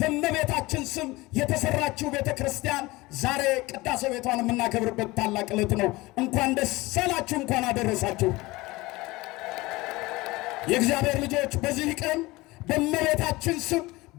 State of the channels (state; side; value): quieter; right; 21.0 dB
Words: ስም የተሰራችው ቤተ ክርስቲያን ዛሬ ቅዳሴ ቤቷን የምናከብርበት ታላቅ ዕለት ነው። እንኳን ደስ አላችሁ፣ እንኳን አደረሳችሁ። የእግዚአብሔር ልጆች በዚህ ቀን በእመቤታችን ስም